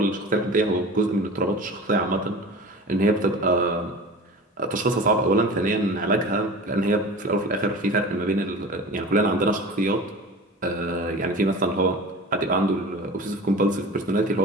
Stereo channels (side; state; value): both; normal; correlation 0.36